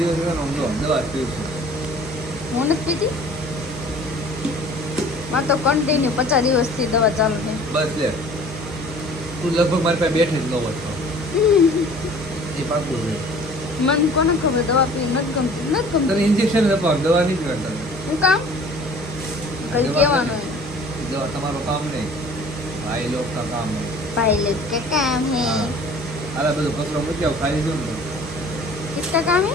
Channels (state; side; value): normal; both; correlation 0.49